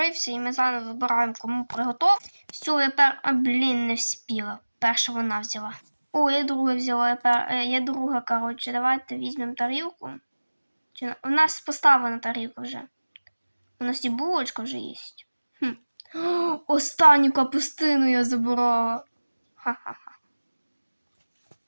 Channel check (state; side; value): inverted; both; correlation -1.00